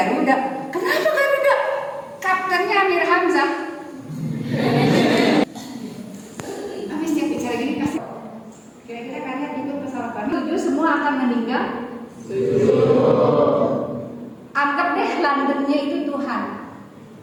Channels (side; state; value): both; identical; correlation 1.00